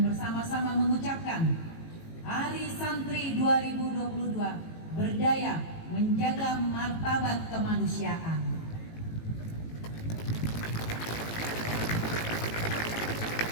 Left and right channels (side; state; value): right; late; 18 ms